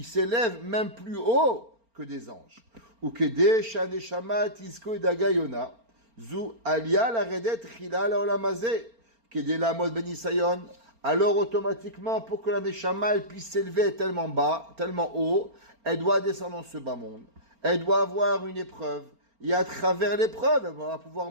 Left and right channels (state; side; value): late; left; 4.4 ms